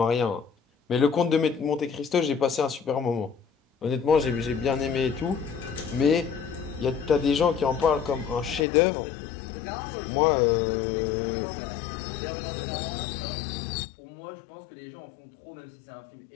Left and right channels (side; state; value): right; drops out; at 8.7 s